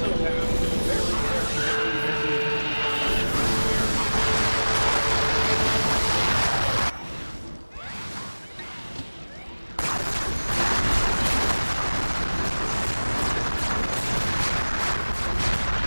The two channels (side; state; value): both; inverted; correlation -1.00